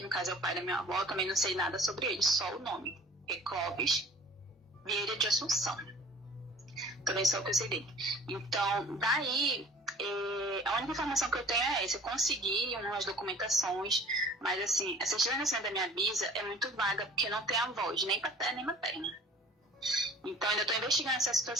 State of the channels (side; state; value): both; normal; correlation 0.46